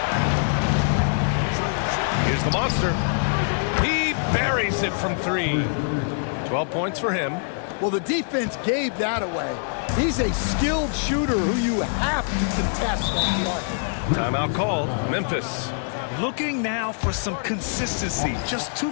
Here's the monster. He buries it from 3. 12 points for him. Well, the defense gave that away. He's a skilled shooter who you have to contest on the arc. Timeout called. Memphis. Looking now for some consistency. Just too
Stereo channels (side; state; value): right; silent; digital silence